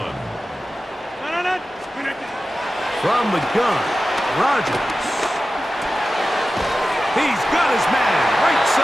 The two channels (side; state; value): both; normal; correlation 0.94